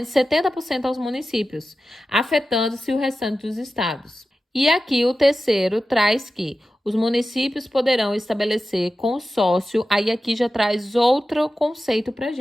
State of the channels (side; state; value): both; normal; correlation 0.93